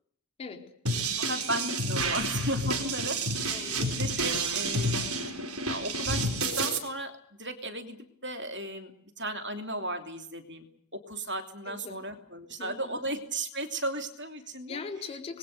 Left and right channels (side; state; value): both; normal; correlation 0.08